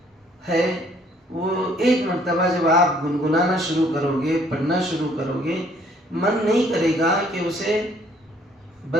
ہے، وہ ایک مرتبہ جب آپ گنگنانا شروع کرو گے، پڑھنا شروع کرو گے، من نہیں کرے گا کہ اسے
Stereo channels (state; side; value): normal; both; correlation 0.62